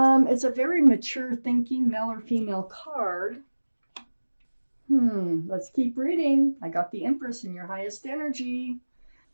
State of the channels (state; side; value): inverted; both; correlation -1.00